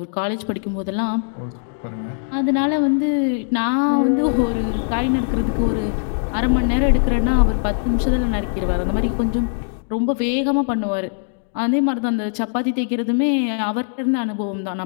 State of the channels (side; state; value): right; silent; digital silence